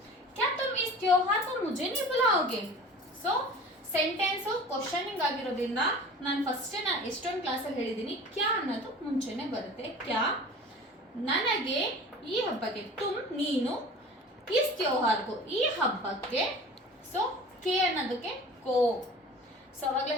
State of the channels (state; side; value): normal; both; correlation 0.40